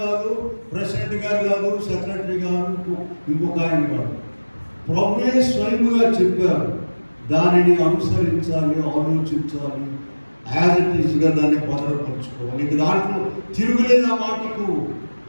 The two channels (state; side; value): inverted; both; correlation -1.00